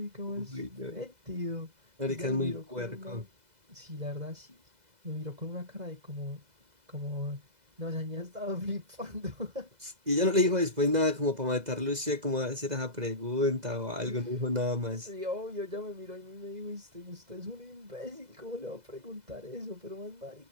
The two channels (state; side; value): late; left; 2.0 ms